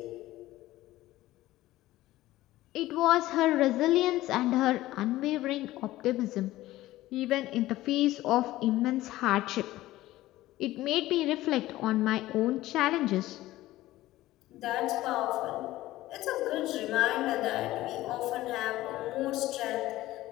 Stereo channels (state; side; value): quieter; right; 16.3 dB